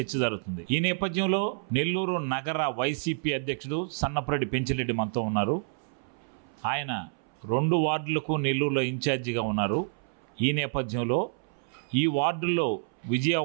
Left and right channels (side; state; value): left; silent; 59 dB below the other